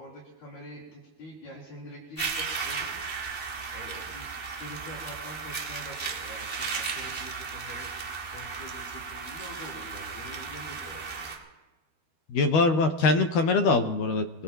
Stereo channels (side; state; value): right; late; 13 ms